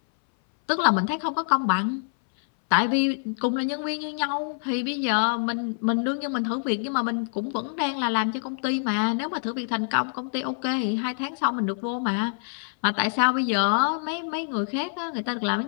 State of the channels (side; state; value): right; silent; 61 dB below the other